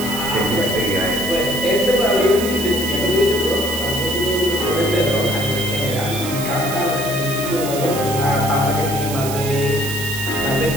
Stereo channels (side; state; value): right; noise; hiss, 8 dB below the sound